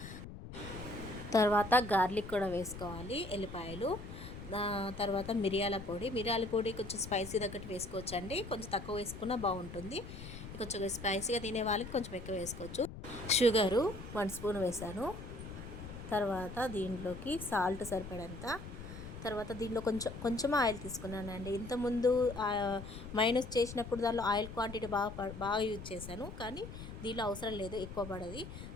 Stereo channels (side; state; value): left; noise; rumble, 11 dB below the sound